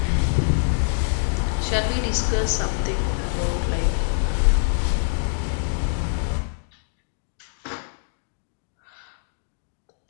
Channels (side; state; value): right; silent; digital silence